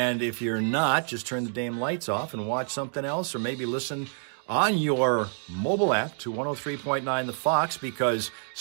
if you're not, just turn the damn lights off and watch something else, or maybe listen on your mobile app to 103.9 The Fox, because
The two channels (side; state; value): left; silent; 56 dB below the other